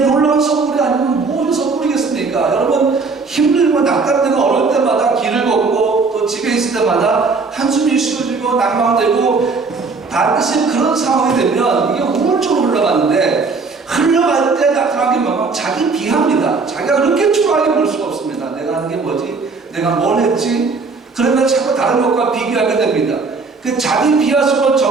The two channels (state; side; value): quieter; left; 4.3 dB